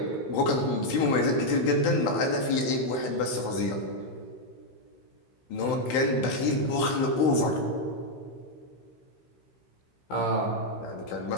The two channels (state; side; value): late; right; 16 ms